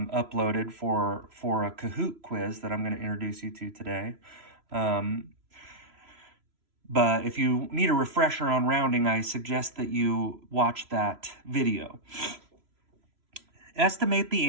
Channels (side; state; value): left; late; 3.0 ms